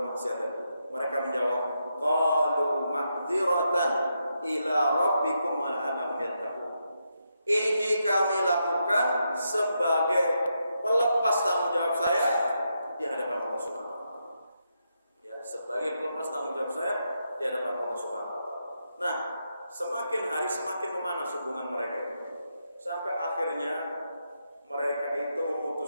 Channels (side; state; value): both; inverted; correlation -0.83